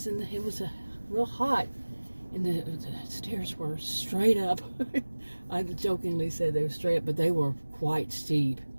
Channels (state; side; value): inverted; both; correlation -1.00